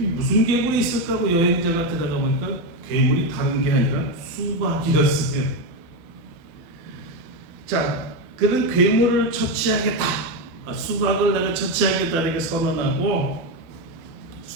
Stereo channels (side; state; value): left; late; 12 ms